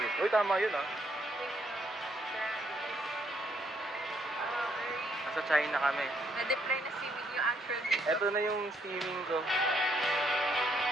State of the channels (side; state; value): both; normal; correlation 0.72